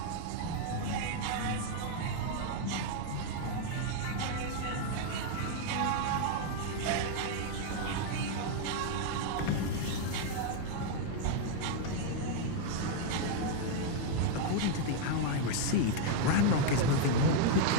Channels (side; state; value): both; different; correlation 0.01